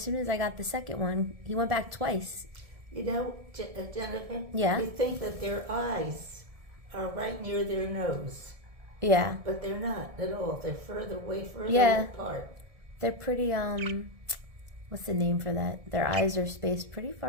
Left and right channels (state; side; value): late; left; 1.7 ms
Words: soon as I got the second one, he went back twice. You know, Jennifer? Yeah. You think that their eyes are right near their nose. Yeah. But they're not at all. They're further apart. They're pretty, what's the name for that? Their eyes are spaced pretty